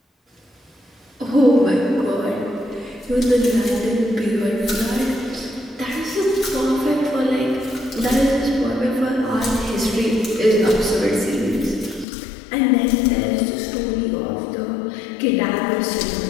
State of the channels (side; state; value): right; drops out; at 12.1 s